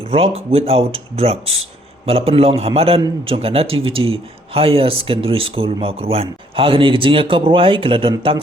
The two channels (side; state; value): both; normal; correlation 0.65